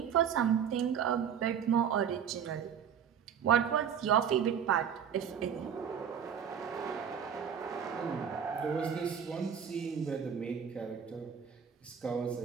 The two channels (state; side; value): quieter; left; 8.0 dB